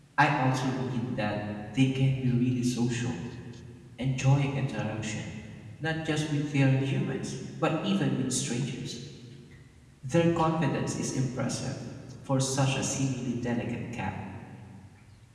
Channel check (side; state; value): both; identical; correlation 1.00